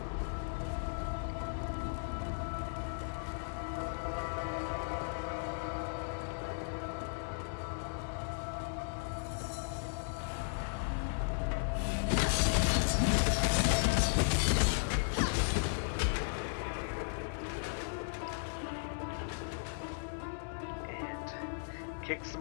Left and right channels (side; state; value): right; silent; digital silence